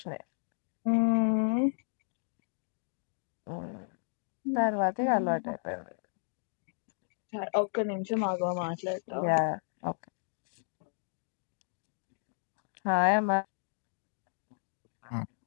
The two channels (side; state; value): right; silent; digital silence